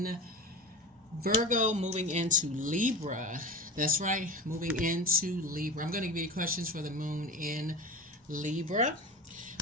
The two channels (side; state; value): both; normal; correlation 0.29